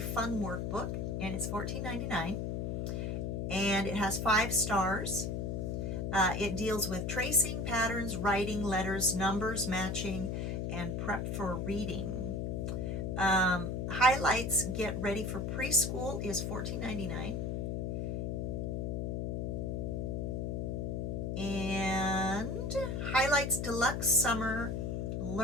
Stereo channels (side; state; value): left; noise; hum, 1 dB below the sound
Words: Workbook, and it's $14.99, and it has 5 stars. It deals with tracing, patterns, writing, letters, numbers, matching, and prep for reading. Highlights Get Ready for Preschool is $14.99. And Highlights Deluxe Summer